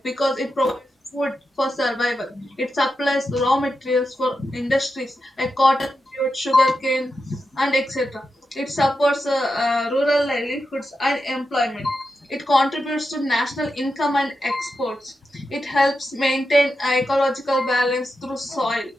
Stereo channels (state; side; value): normal; both; correlation 0.88